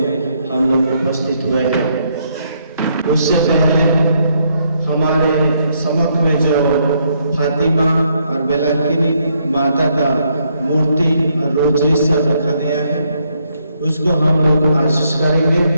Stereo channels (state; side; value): inverted; both; correlation -0.73